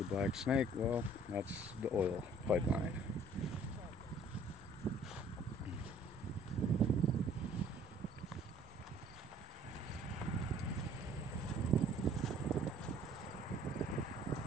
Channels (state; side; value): normal; both; correlation 0.56